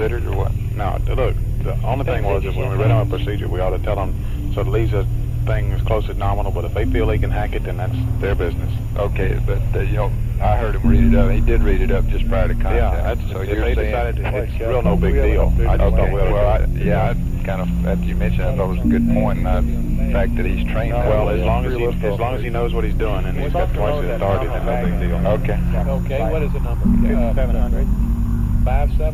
or what? No, look, the only thing was if when we read our procedure, we ought to tell them, so it leaves us things close to nominal, but if they feel they can hack it, then that's their business. Okay, but you know, I heard him read it up. He did read it up just prior to contact. Yeah, that's, so if you're they saying, decided it's real no big deal. I just thought, I kind of, after you mentioned it, I thought it was a good point, and the fact that he's trained that well, way. as long as he knows what he's doing and he's got twice his authority, then no big deal. Okay. Okay, what is the number? 700.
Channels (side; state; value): both; identical; correlation 1.00